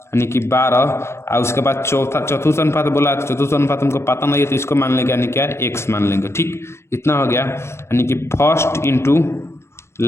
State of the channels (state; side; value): late; right; 0.13 ms